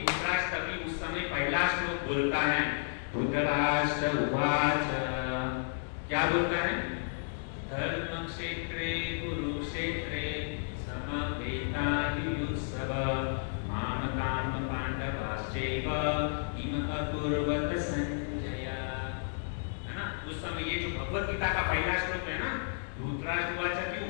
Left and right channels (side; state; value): right; silent; digital silence